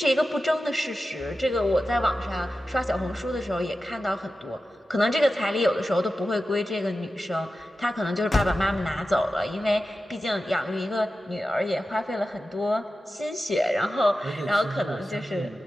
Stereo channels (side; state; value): both; normal; correlation 0.93